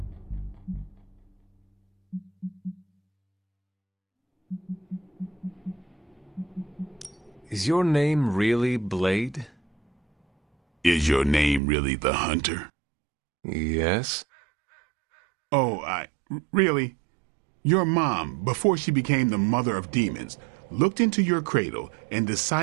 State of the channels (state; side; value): drops out; left; at 11.6 s